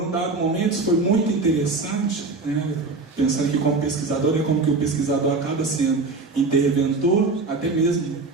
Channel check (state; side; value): quieter; left; 3.7 dB